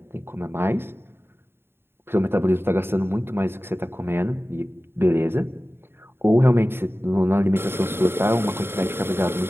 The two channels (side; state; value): left; late; 0.11 ms